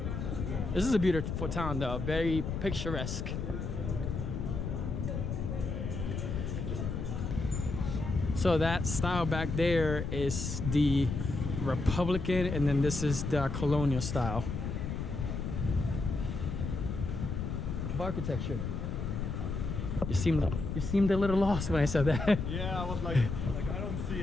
This is a beautiful town though, very picturesque. So that style back there is the Republican, and then this is the colonial style of architecture. You seemed a little lost when I said that. Yeah, I was like I don't see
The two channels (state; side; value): noise; left; rumble, 3 dB below the sound